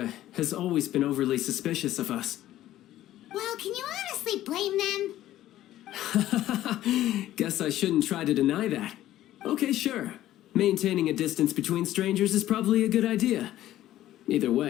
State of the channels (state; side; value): quieter; right; 13.8 dB